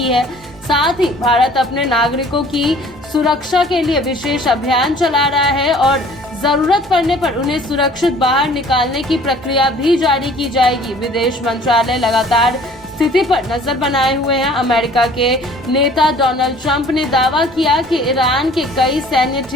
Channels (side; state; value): both; normal; correlation 0.52